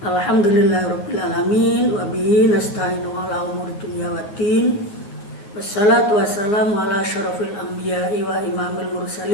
Alhamdulillahirrabbilalamin. Wabihi nasta'inu ala umuri dunya waddin. Wassalatu wassalamu ala syarafil anbiya'i wa imamil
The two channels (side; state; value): right; late; 9.8 ms